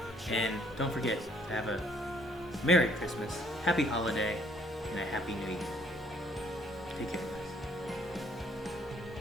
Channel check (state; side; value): normal; both; correlation 0.64